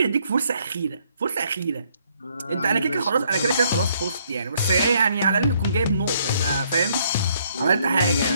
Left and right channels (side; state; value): both; inverted; correlation -0.68